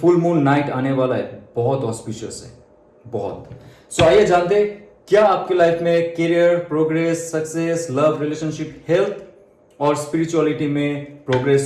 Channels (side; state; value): both; identical; correlation 1.00